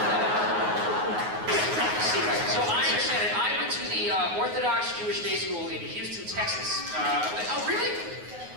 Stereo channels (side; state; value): left; late; 9.5 ms